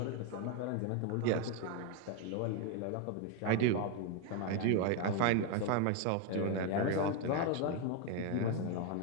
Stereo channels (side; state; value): both; different; correlation 0.01